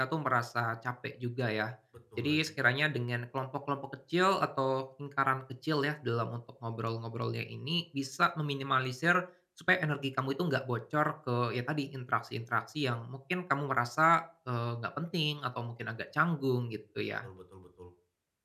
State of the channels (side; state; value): both; identical; correlation 1.00